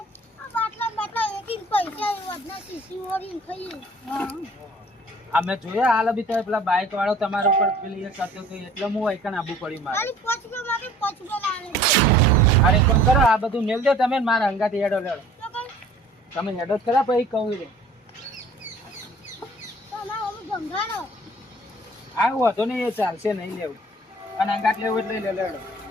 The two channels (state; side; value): normal; both; correlation 0.51